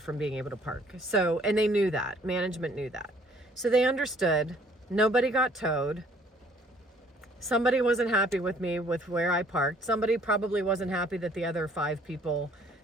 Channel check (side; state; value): both; normal; correlation 0.59